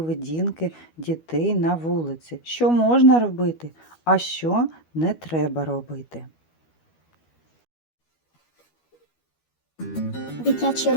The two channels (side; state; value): right; late; 12 ms